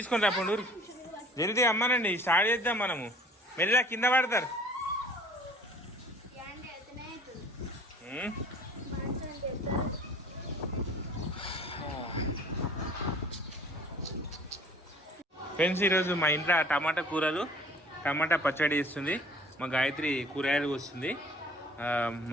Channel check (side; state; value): both; normal; correlation 0.50